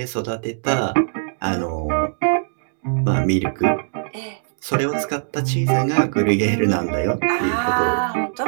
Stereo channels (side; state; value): left; silent; digital silence